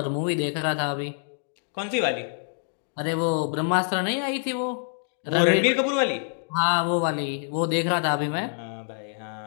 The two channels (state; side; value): silent; right; digital silence